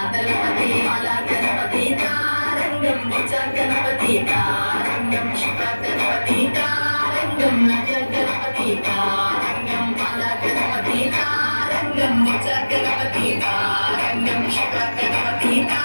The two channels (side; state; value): both; inverted; correlation -1.00